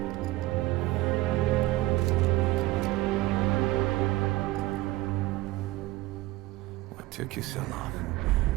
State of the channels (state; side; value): quieter; left; 18.2 dB